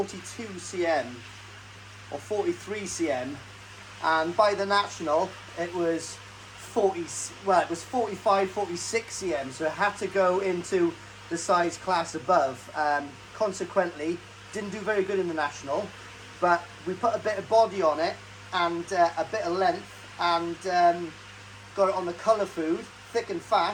cm or 43 cm. And by the National, it was 45, 46 cm. So I had to go into the size class above. Consequently, didn't do very good in the National. But we put a bit of body on it and a bit of length, and got it on the colour food, thick and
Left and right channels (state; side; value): identical; both; correlation 1.00